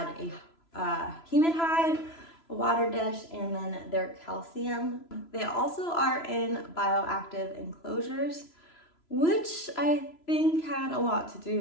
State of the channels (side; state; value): right; late; 3.0 ms